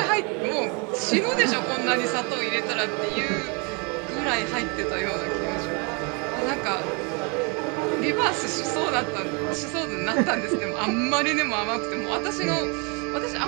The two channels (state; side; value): quieter; left; 33.1 dB